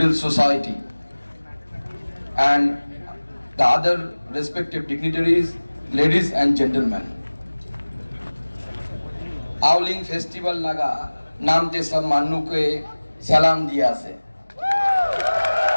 society, and the other respective dignitaries, ladies and gentlemen. AOLEANG festival naga namte sab mannu ke salam diya se.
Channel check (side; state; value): both; inverted; correlation -1.00